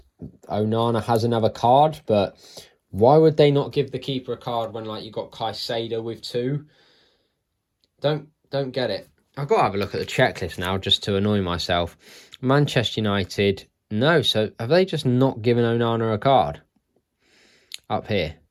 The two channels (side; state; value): both; identical; correlation 1.00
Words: Onana has another card, but why would they not give the keeper a card when you got Caicedo with 2? Don't get it. I've got to have a look at the checklist now just to annoy myself. Manchester United, no. So have they just not given Onana a card up here?